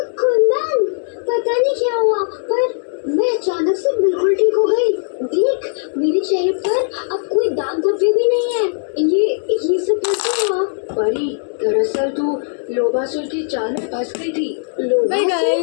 कुंदन, पता नहीं क्या हुआ, पर मैं अचानक से बिल्कुल ठीक हो गई। देख, मेरे चेहरे पर अब कोई दाग धब्बे भी नहीं है। ये सब कैसे हुआ? परी, दरअसल तू लोभासुर की चाल में फंस गई थी।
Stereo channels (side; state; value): right; silent; 64 dB below the other